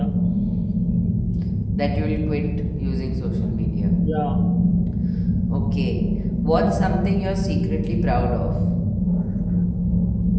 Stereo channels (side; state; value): both; identical; correlation 1.00